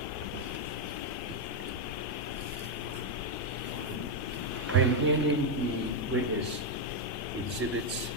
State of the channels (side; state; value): both; normal; correlation 0.02